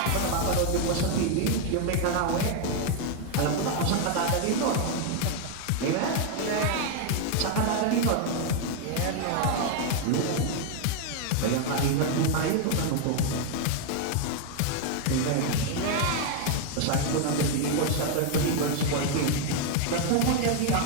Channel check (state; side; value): different; both; correlation 0.01